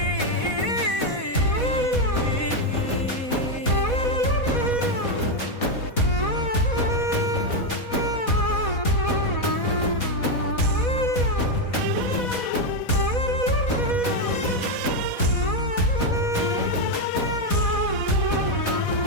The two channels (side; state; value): right; late; 4.1 ms